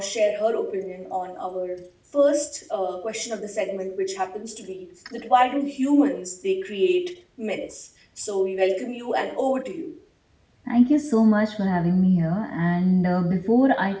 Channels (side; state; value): both; identical; correlation 1.00